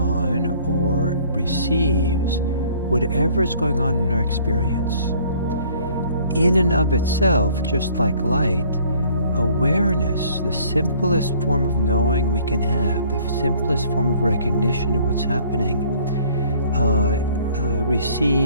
or receives whatever is going on in our experience. In and of itself, just like light, awareness, the simplest form of knowing we can have, the simplest form of recognition of what's happening,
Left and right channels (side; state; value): both; inverted; correlation -0.56